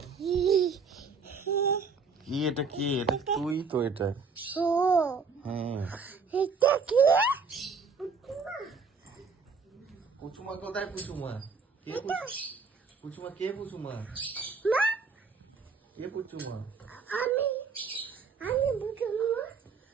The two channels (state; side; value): quieter; left; 4.9 dB